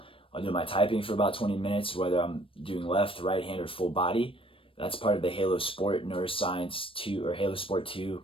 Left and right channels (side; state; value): right; late; 0.26 ms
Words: I'll do my typing for about 20 minutes, whether I'm doing left, right hand, or full body. That's part of the Halo Sport Neuroscience 2, or Halo Sport 2,